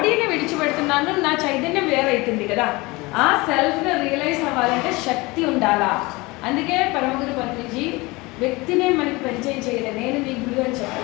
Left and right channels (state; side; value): quieter; right; 23.2 dB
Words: విడిచిపెడుతున్నాను, నా చైతన్యం వేరైతుంది కదా. ఆ సెల్ఫ్ని రియలైజ్ అవ్వాలంటే శక్తి ఉండాలా. అందుకే పరమగురు పత్రిజీ వ్యక్తినే మనకి పరిచయం చేయలేదు. నేను నీ గురువు అని